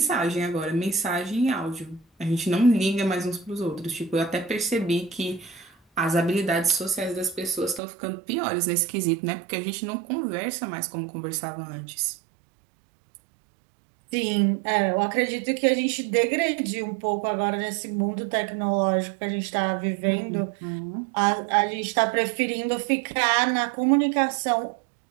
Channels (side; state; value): left; drops out; at 7.8 s